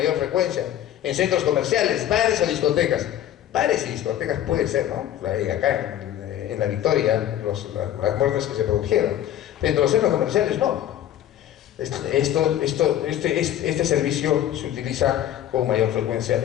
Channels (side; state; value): right; quieter; 11.6 dB